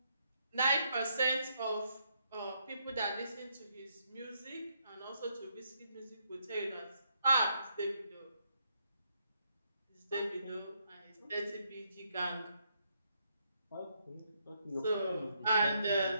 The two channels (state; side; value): inverted; both; correlation -0.75